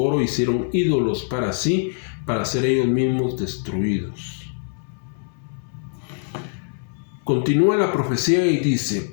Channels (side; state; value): right; silent; 60 dB below the other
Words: oro hicieron ídolos para sí, para ser ellos mismos destruidos. Continúa la profecía y dice: